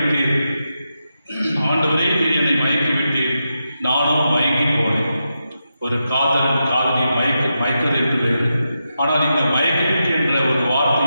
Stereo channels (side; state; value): both; inverted; correlation -0.87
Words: ஆண்டவரே நீ என்னை மயக்கி விட்டீர், நானும் மயங்கி போனேன். ஒரு காதலன் காதலியை மயக்குது என்று வேறு. ஆனால் இந்த மயக்கி விட்டு என்ற ஒரு